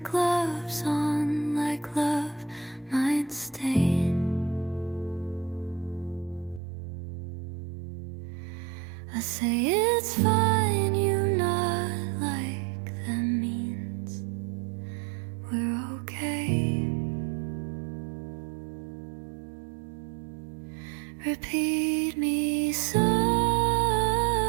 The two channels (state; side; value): drops out; left; at 6.6 s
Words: gloves on, like love might stain. I say it's fine, you nod like that means we're okay. Repeat me softly,